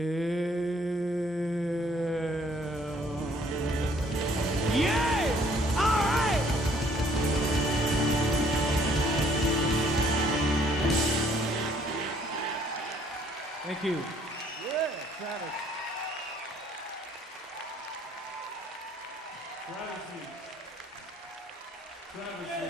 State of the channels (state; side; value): normal; both; correlation 0.62